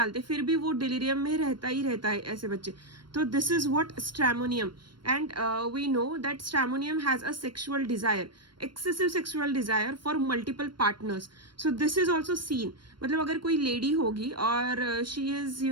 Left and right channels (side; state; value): left; late; 0.72 ms